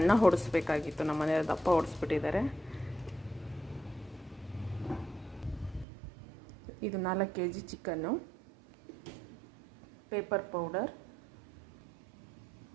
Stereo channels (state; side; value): drops out; left; at 5.9 s